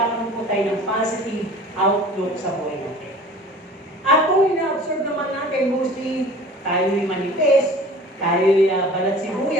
po tayo ng positive outlook sa buhay natin. At kung ina-absorb naman natin, mostly tayo'y manifest, tayo'y balat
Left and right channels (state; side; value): normal; both; correlation 0.44